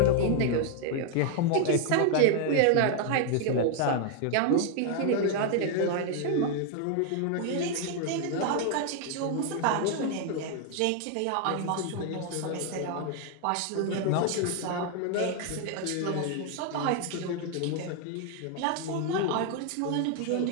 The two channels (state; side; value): different; both; correlation 0.00